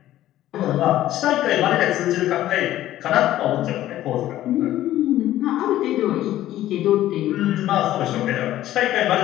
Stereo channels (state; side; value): quieter; right; 13.8 dB